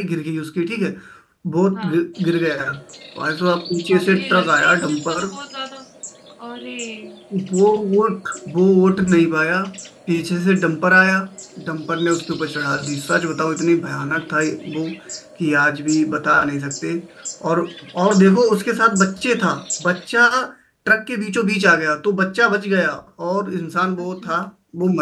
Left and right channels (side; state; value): both; identical; correlation 1.00